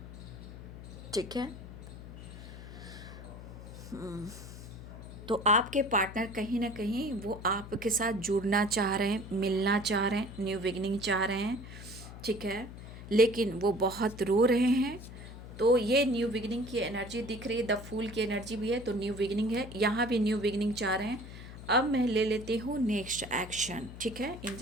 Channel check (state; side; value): noise; left; hum, 13 dB below the sound